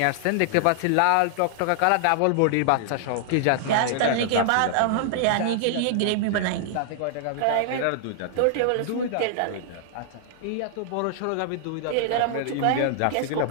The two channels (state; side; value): different; both; correlation -0.01